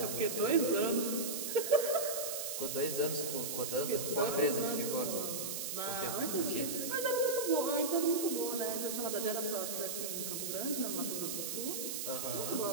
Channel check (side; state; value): right; noise; hiss, 3 dB below the sound